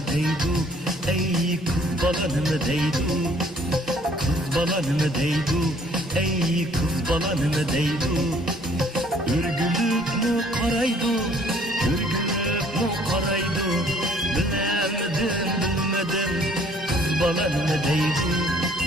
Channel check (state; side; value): normal; both; correlation 0.59